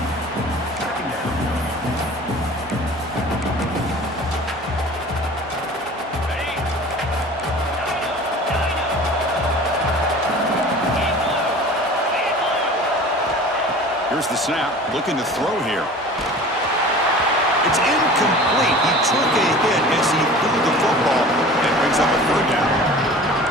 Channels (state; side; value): normal; both; correlation 0.41